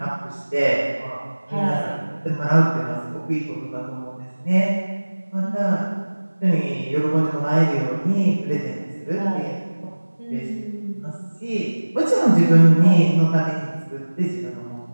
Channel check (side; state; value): both; inverted; correlation -1.00